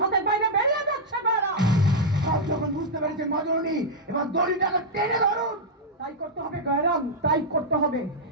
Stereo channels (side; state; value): both; normal; correlation -0.05